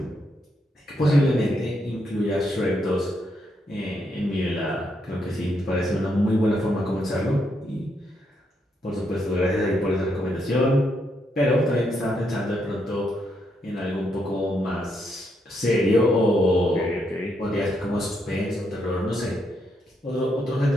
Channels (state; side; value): normal; both; correlation 0.78